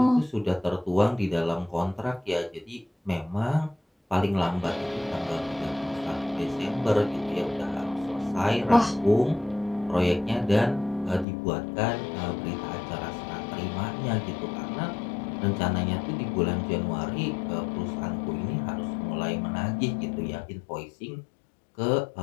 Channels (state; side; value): drops out; right; at 11.2 s